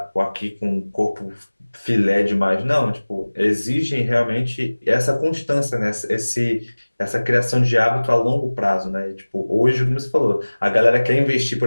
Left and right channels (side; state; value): both; inverted; correlation -1.00